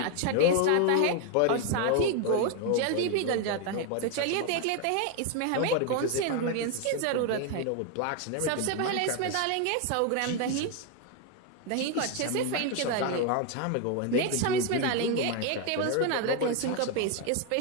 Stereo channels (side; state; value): both; different; correlation 0.01